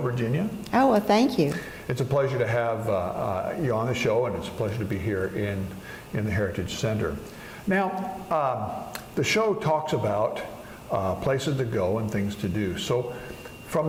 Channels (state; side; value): identical; both; correlation 1.00